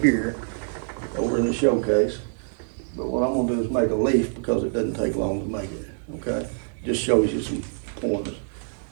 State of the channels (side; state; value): left; silent; digital silence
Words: here over in the showcase, but what I'm gonna do is make a leaf because it doesn't take long to make it, okay? Just shows you some pointers,